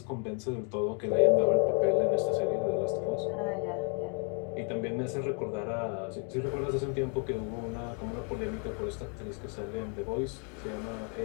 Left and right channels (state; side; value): quieter; right; 38.4 dB